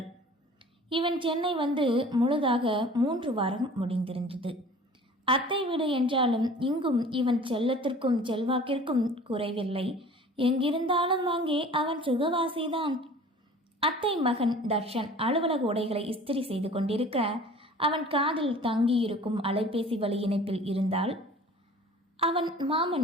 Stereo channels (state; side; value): normal; both; correlation 0.46